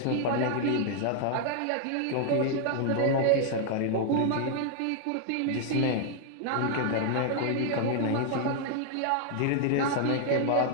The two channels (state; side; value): different; both; correlation 0.00